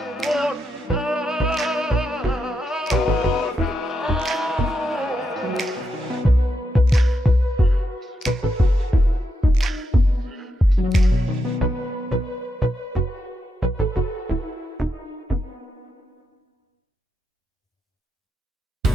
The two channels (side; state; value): both; normal; correlation 0.83